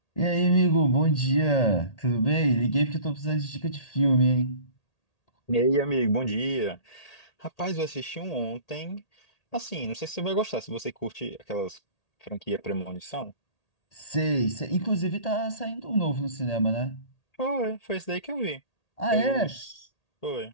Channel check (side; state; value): right; late; 1.8 ms